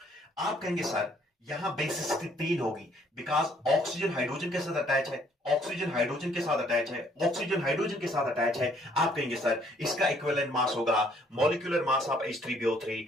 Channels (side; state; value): both; normal; correlation 0.64